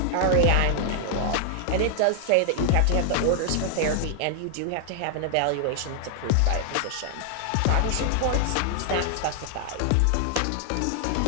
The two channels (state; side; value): different; both; correlation 0.00